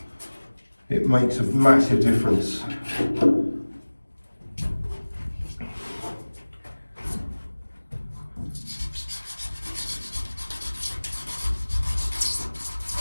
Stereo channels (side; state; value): both; inverted; correlation -1.00